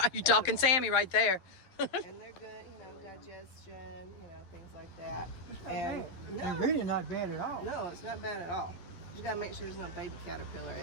Oh, you talking Sammy right there. And they're good, digestion, things like that. And They're really not bad at all. no, it's not bad at all. You just gotta make sure there's no baby caterpillar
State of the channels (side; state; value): right; late; 11 ms